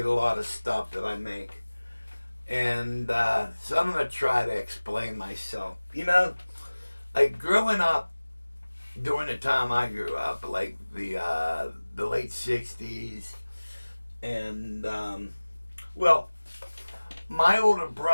a lot of stuff that I make. And so I'm gonna try to explain myself. Like growing up during the time I grew up, like the late '60s, and well, my older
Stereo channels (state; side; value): inverted; both; correlation -1.00